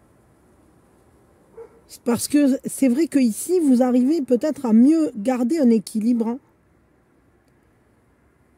Parce que c'est vrai qu'ici, vous arrivez peut-être à mieux garder un équilibre.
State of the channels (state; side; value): identical; both; correlation 1.00